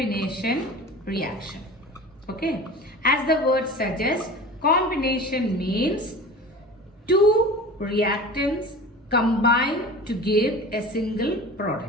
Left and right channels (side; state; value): both; normal; correlation 0.36